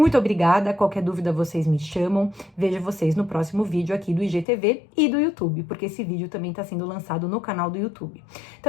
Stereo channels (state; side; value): drops out; right; at 4.5 s